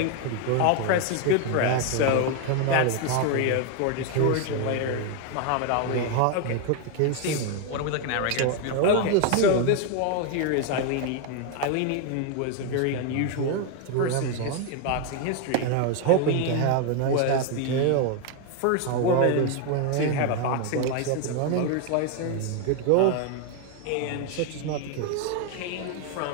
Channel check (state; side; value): different; both; correlation 0.01